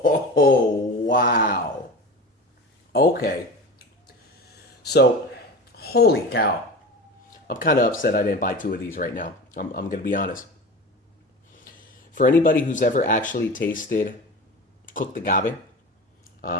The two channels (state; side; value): normal; both; correlation 0.32